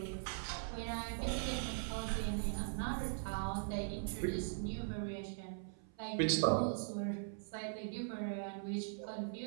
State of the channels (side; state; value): left; silent; 50 dB below the other